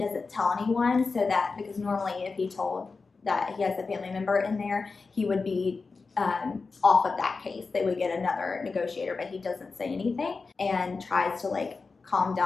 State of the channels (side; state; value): right; quieter; 4.3 dB